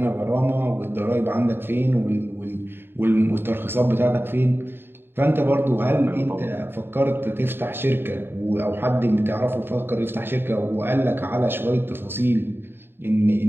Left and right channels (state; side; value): late; left; 0.10 ms